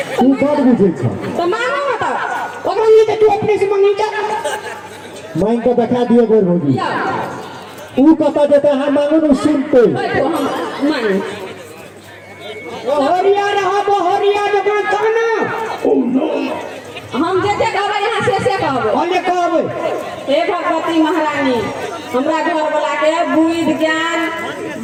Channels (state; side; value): identical; both; correlation 1.00